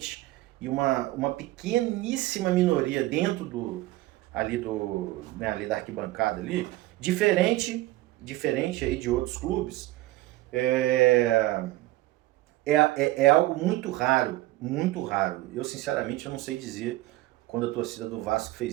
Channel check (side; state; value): left; quieter; 17.6 dB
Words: e uma pequeníssima minoria dentro ali da arquibancada ali, diferente aí de outros clubes, é, é algo muito raro, muito raro. Eu, sinceramente, eu não sei dizer quando a torcida do Vasco